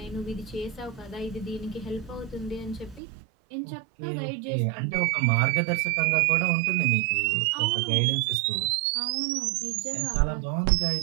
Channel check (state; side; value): drops out; left; at 3.0 s